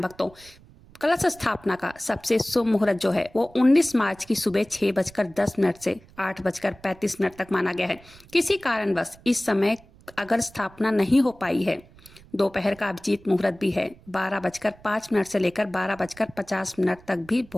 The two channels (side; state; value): right; noise; rumble, 25 dB below the sound